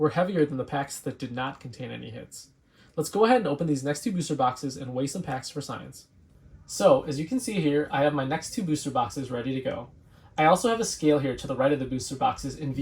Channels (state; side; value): identical; both; correlation 1.00